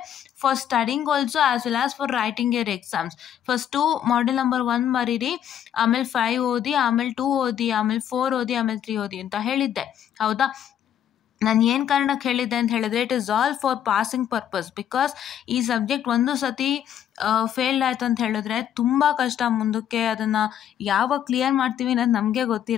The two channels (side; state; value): right; quieter; 10.0 dB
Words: for studying also as well as for writing your exams. First model number 1 ಬರೀರಿ, ಆಮೇಲೆ 5 ಓದಿ, ಆಮೇಲೆ 2 ಓದಿ, ಆಮೇಲೆ 4 ಓದಿ, ಆಮೇಲೆ 3 ಓದಿ ಅಂತ ಹೇಳಿದ್ದೆ, ಹೌದಾ. ನಾನು ಏನು ಕಾರಣಕ್ಕೆ ಹೇಳಿದ್ದೆ ಅಂತ ಹೇಳಿದ್ರೆ, it is all for passing purpose. Because ಈ ಸಬ್ಜೆಕ್ಟ್ ಒಂದು ಸತಿ ಫೇಲ್ಡ್ ಆಯ್ತು ಅಂತ ಹೇಳಿದ್ರೆ ತುಂಬ ಕಷ್ಟ, ಮುಂದಕ್ಕೆ ಅದನ್ನು ಯಾವಾಗ ಕ್ಲಿಯರ್ ಮಾಡ್ತೀವಿ ಅನ್ನೋದು ನಮಗೆ